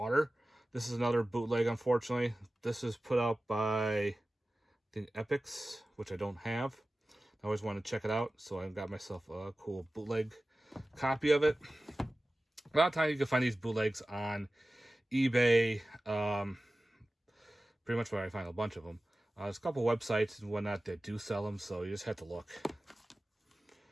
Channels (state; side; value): normal; both; correlation 0.96